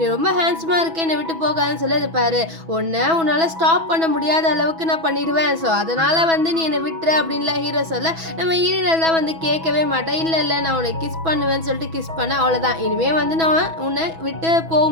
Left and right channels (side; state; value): left; late; 6.1 ms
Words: ரொம்ப ஹேண்ட்ஸமாக இருக்கேன், என்னை விட்டு போகாதுன்னு சொல்லி, இது பாரு, உன்னால் ஸ்டாப் பண்ண முடியாத அளவுக்கு நான் பண்ணிடுவேன், ஸோ அதனால் வந்து நீ என்னை விட்டுரு அப்படின்லாம் ஹீரோ சொல்ல. நம்ம ஹீரோயின் எல்லாம் வந்து கேட்கவே மாட்டேன். இல்லை நான் உன்னை கிஸ் பண்ணுவேன்னு சொல்லிட்டு கிஸ் பண்ண, அவ்வளோதான், இனிமேல் வந்து நான் உன்னை விட்டு போக